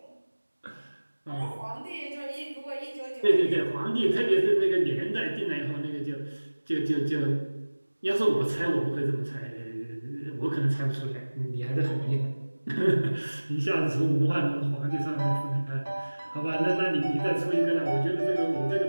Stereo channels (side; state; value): both; inverted; correlation -1.00